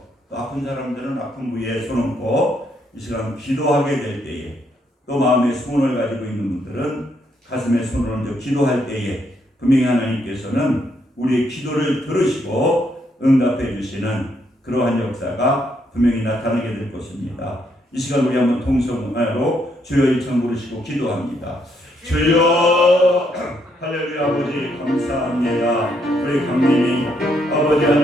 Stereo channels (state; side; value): normal; both; correlation 0.74